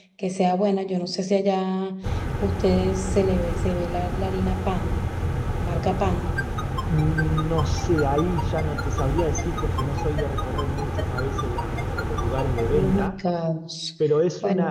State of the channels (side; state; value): both; identical; correlation 1.00